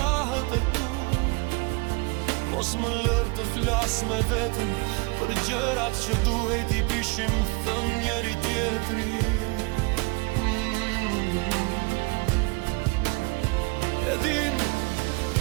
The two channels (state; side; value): quieter; left; 28.8 dB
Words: e tu. Mos më lër të flas me veten për gjërat që duhet i bishim thënë njëri tjetrit. E din,